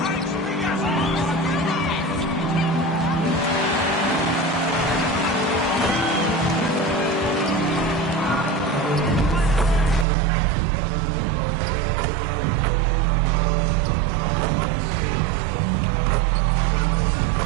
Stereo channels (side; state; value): left; drops out; at 10.1 s